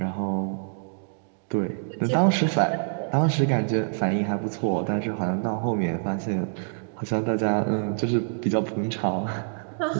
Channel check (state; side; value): silent; left; digital silence